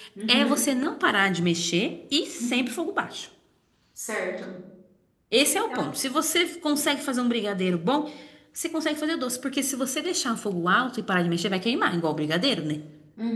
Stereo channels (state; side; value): identical; both; correlation 1.00